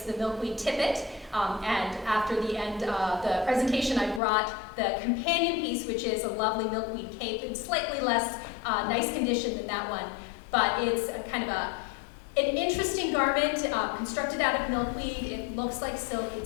the milkweed tippet. And after the end of the presentation, I brought the companion piece, which is a lovely milkweed cape in slightly less nice condition than that one. But it's kind of an interesting garment constructed out of milkweed. It looks like silk.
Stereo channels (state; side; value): drops out; right; at 4.2 s